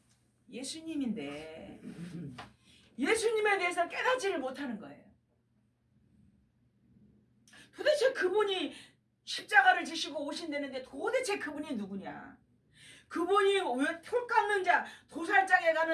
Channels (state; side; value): identical; both; correlation 1.00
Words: 예수님인데 예수님에 대해서 깨닫지를 못하는 거예요. 도대체 그분이 십자가를 지시고 오신다는데 도대체 그분이 누구냐? 그분이 왜 털 깎는 자, 도살장에